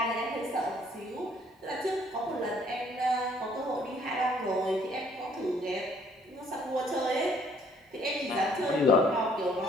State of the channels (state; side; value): normal; both; correlation 0.62